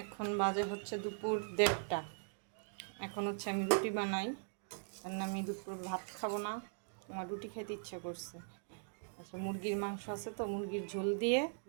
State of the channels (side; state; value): left; silent; digital silence